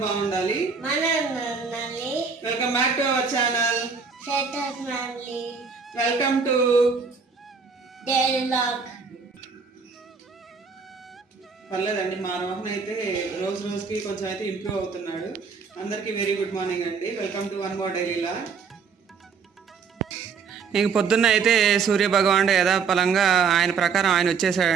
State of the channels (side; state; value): left; quieter; 5.6 dB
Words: బాగుండాలి. Welcome back to our channel. Welcome to daily vlog. పర్లేదండి, మా రోహన్ అయితే రోజు రోజుకి కొంచెం అయితే ఇంప్రూవ్ అవుతున్నాడు. అందరికీ వెరీ గుడ్ మార్నింగ్ అండి. Welcome to one more daily vlog. ఇంక పొద్దున్న అయితే సూర్య భగవానుడు యథాపలంగా ఆయన ప్రకారం ఆయన